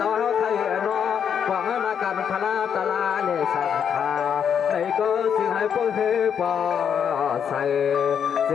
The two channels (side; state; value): right; quieter; 7.9 dB